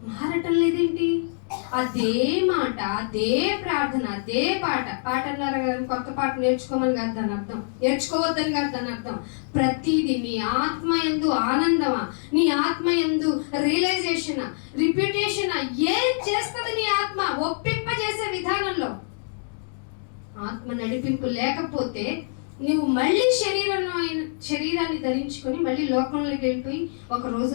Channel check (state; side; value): silent; right; digital silence